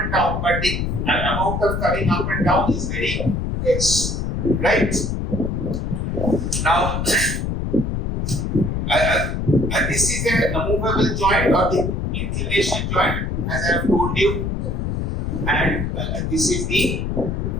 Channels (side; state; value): left; noise; rumble, 1 dB below the sound